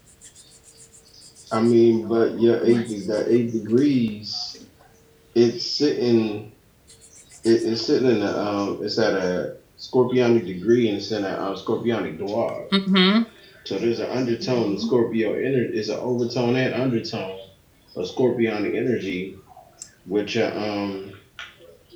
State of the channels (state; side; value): identical; both; correlation 1.00